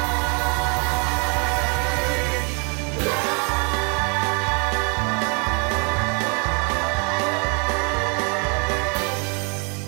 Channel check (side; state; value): left; quieter; 35.1 dB